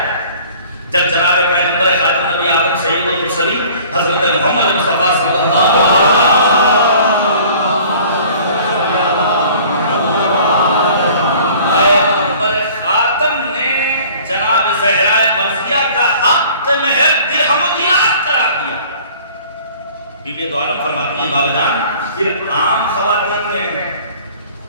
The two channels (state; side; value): inverted; both; correlation -0.50